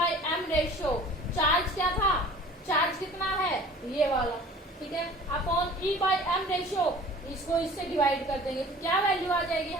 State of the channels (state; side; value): normal; both; correlation 0.45